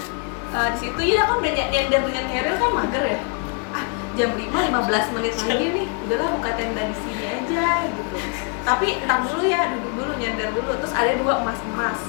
di situ ya kan udah nyender dengan Keril kan mager ya. Jam 5:15 menit lagi nih, udahlah buka tenda di sini aja gitu. Tapi entar dulu ya, duduk dulu, nyender dulu. Terus ada 2 emas-emas.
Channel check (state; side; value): quieter; right; 37.0 dB